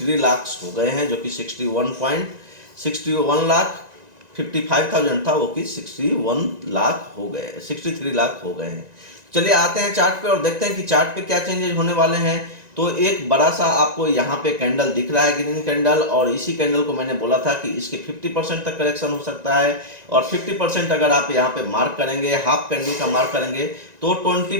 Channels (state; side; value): late; left; 1.9 ms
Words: लाख हो गए हैं, जो कि 61 लाख 55,000 था वो कि 61 लाख हो गए, 63 लाख हो गए हैं। चलिए आते हैं चार्ट पे और देखते हैं कि चार्ट पे क्या चेंजेस होने वाले हैं। तो एक बड़ा सा आपको यहाँ पे कैंडल दिख रहा है, ग्रीन कैंडल, और इसी कैंडल को मैंने बोला था कि इसके 50% तक करेक्शन हो सकता है, और 50% अगर आप यहाँ पे मार्क करेंगे, हाफ कैंडल का मार्क करेंगे तो